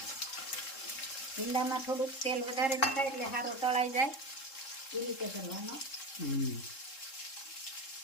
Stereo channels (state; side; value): late; right; 3.7 ms